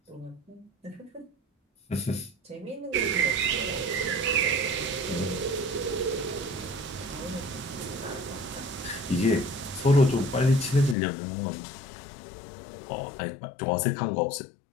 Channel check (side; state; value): right; drops out; at 11.0 s